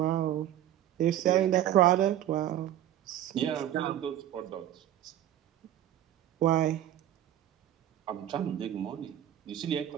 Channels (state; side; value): quieter; left; 11.9 dB